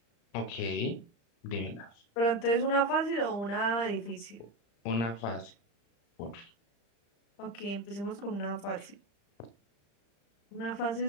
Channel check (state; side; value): late; right; 35 ms